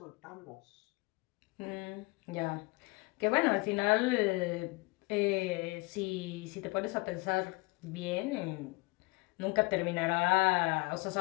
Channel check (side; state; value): right; quieter; 25.5 dB